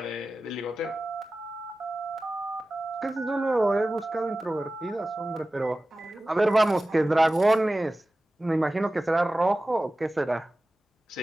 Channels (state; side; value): normal; both; correlation 0.96